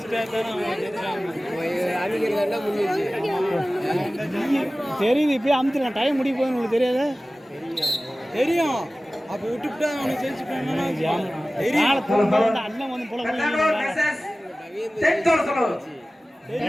அவங்க முடிஞ்சிச்சு தெரியுது இப்பயே அமுத்துலாம் டைம் முடிய போகுது உங்களுக்கு தெரியாத தெரியும். அப்போ விட்டுவிட்டா அவனுக்கு ஜெயிச்சுட்டாங்கன்னா அண்ணன் வந்து போல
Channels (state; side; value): normal; both; correlation 0.97